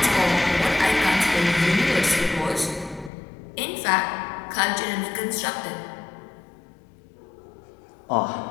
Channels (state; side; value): drops out; right; at 3.1 s